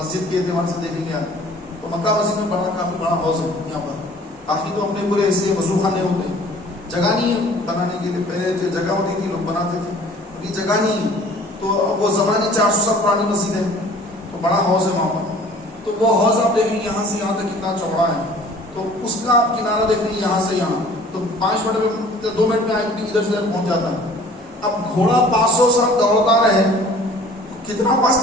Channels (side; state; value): both; normal; correlation 0.50